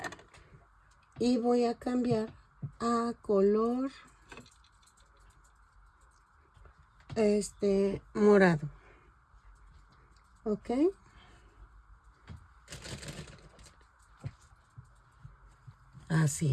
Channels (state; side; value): identical; both; correlation 1.00